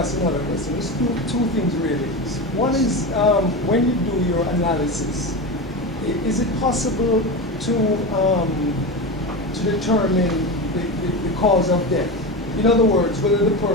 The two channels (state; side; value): normal; both; correlation 0.22